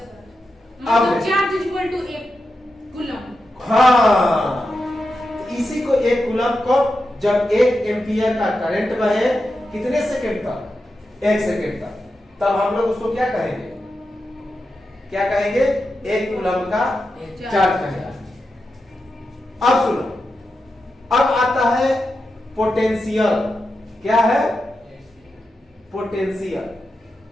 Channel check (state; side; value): normal; both; correlation 0.89